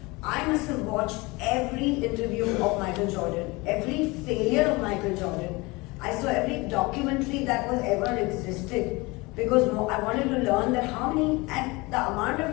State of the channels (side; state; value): right; quieter; 24.3 dB